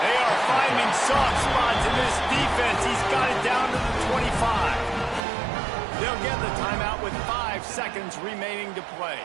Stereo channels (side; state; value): left; drops out; at 5.2 s